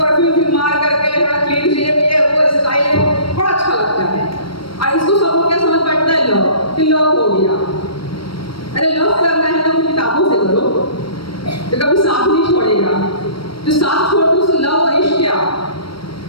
मार करके थोड़ा क्लीन शेव, ये वो स्टाइल है, बड़ा अच्छा लगता है। और इसको सब लोग क्या समझ बैठता है? लव, कि लव हो गया। अरे लव करना है तो किताबों से करो, तो कभी साथ नहीं छोड़ेगा। जो साथ छोड़ दो उससे लव और इश्क क्या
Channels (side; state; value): right; late; 0.74 ms